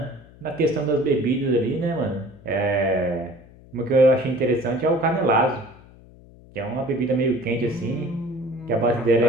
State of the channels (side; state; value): left; noise; hum, 23 dB below the sound